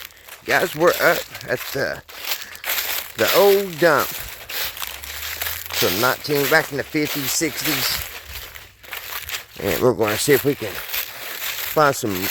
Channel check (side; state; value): both; identical; correlation 1.00